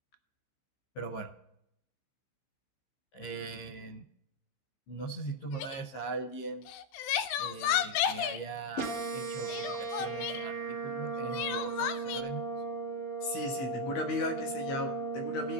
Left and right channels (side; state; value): right; late; 16 ms